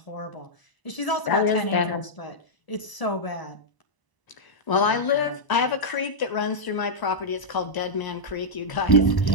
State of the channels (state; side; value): late; right; 1.0 ms